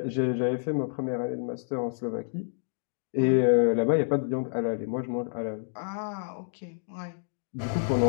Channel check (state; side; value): silent; right; digital silence